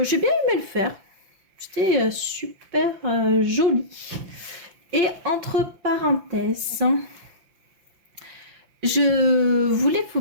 j'ai bien aimé le faire. C'était super joli. Et entre parenthèses, je voulais vous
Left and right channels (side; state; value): left; late; 5.9 ms